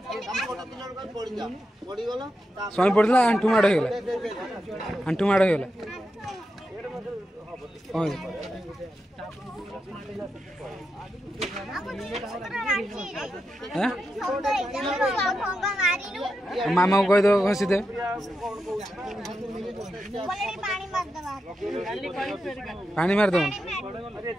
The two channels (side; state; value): both; normal; correlation 0.87